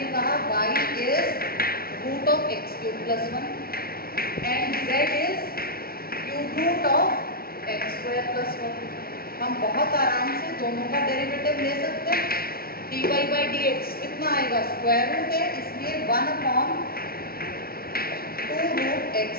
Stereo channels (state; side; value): late; right; 0.44 ms